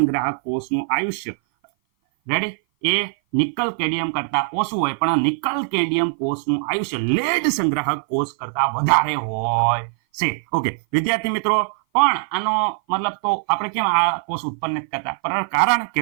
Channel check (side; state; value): left; silent; 57 dB below the other